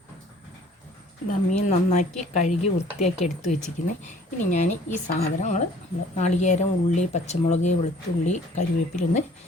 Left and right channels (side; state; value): both; normal; correlation 0.54